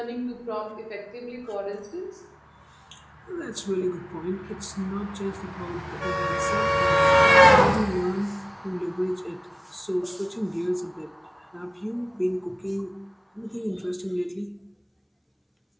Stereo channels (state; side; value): identical; both; correlation 1.00